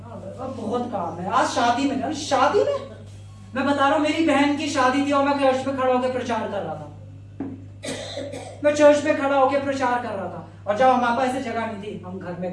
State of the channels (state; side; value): identical; both; correlation 1.00